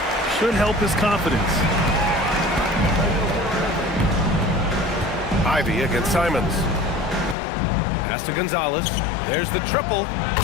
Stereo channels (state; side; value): drops out; right; at 7.4 s